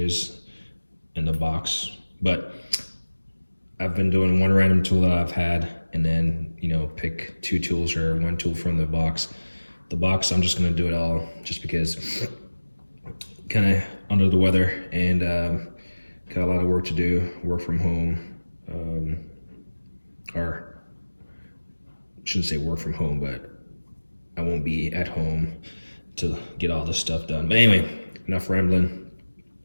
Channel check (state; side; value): inverted; both; correlation -1.00